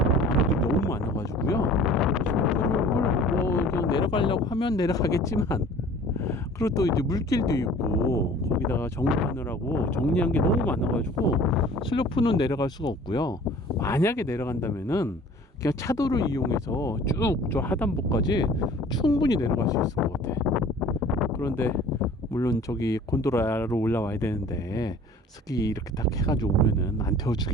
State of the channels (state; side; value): normal; both; correlation 0.47